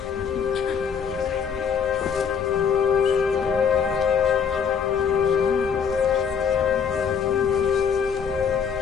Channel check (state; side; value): quieter; right; 6.8 dB